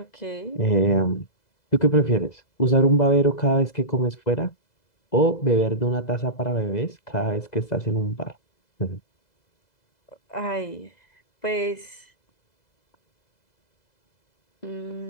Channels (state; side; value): late; right; 2.0 ms